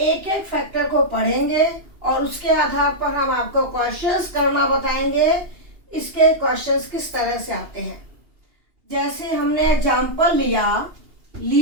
एक फैक्टर को पढ़ेंगे और उसके आधार पर हम आपको क्वेश्चंस करना बताएंगे। इसके क्वेश्चंस किस तरह से आते हैं, जैसे हमने एग्जाम्पल लिया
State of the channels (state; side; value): late; left; 2.8 ms